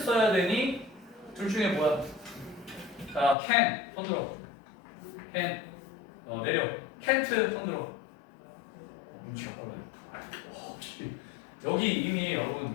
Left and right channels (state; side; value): drops out; right; at 3.4 s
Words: 되니? 둘 중에 뭐야? 자, can. 손 들어. can. 내려. can't 손 들어. 눈치가 빠르네. 여기 이미